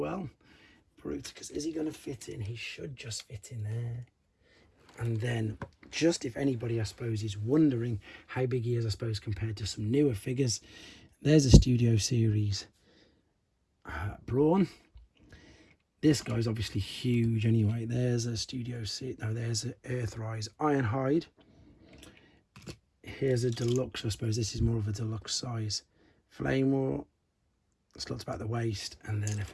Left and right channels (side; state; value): both; identical; correlation 1.00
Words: Bruticus, is he going to fit in? He should just fit in there. And then, just if anybody, I suppose, is wondering how big he is, I suppose, compared to some newer figures, there's a Studio Series Brawn. This guy's obviously huge anyway. There's a Studio Series, no, there's an Earthrise Ironhide. Here's a deluxe, I suppose this is more of a deluxe size. Flame War, slots about the waist, and then